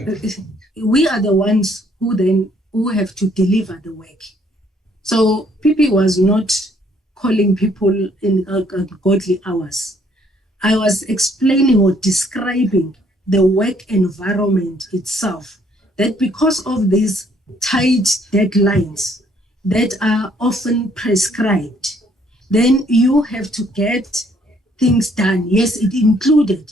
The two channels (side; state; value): both; normal; correlation 0.65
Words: we are the ones who have to deliver the work. So PP was not calling people in godly hours. I was explaining or describing the work environment itself, that because of these tight deadlines that are often prescribed, then you have to get things done. Yes, it included